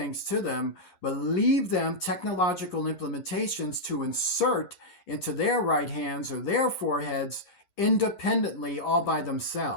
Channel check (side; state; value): right; late; 11 ms